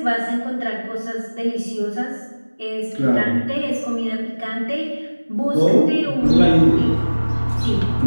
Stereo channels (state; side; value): inverted; both; correlation -1.00